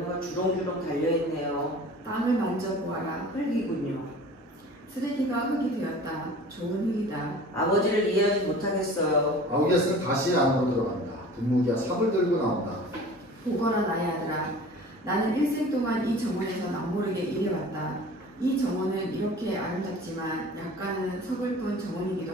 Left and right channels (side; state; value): both; normal; correlation 0.42